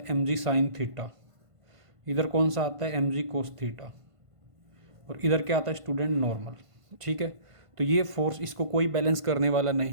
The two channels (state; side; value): late; left; 1.5 ms